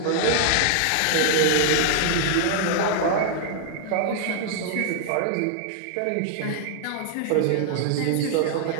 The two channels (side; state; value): both; different; correlation 0.00